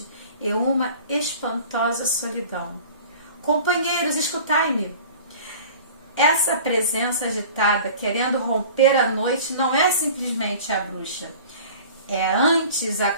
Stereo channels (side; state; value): both; inverted; correlation -0.43